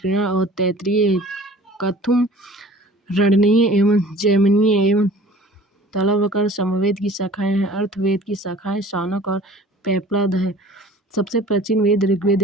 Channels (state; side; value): normal; both; correlation 0.47